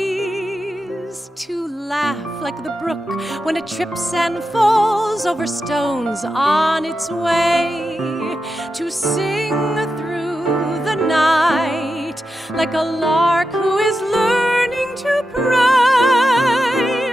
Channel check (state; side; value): normal; both; correlation 0.89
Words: To laugh like the brook when it trips and falls over stones on its way. To sing through the night like a lark who is learning to pray.